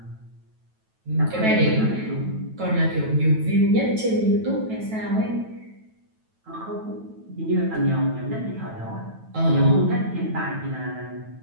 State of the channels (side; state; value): left; late; 9.2 ms